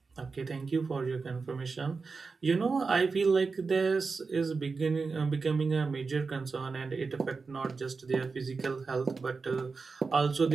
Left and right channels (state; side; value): quieter; left; 4.5 dB